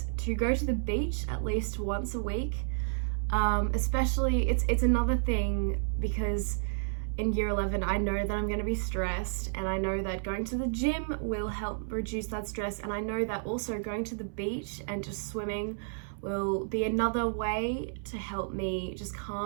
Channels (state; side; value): silent; left; 57 dB below the other